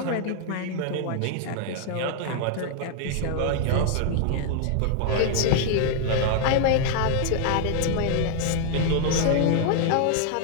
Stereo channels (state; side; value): different; both; correlation 0.00